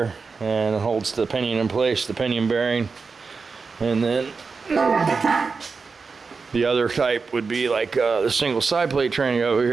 and it holds the pinion in place, the pinion bearing. And then the other type would be like the single side plate tranny over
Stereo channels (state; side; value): quieter; left; 4.7 dB